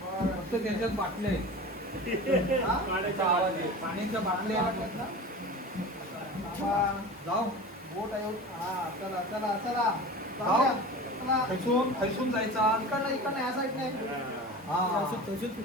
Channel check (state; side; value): normal; both; correlation 0.34